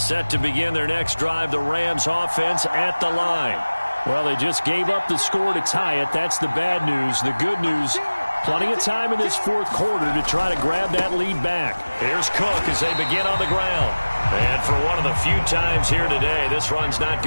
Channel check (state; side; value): inverted; both; correlation -1.00